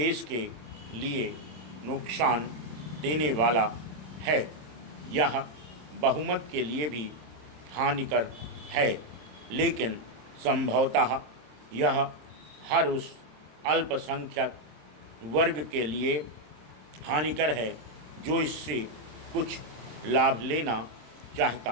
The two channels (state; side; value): late; left; 26 ms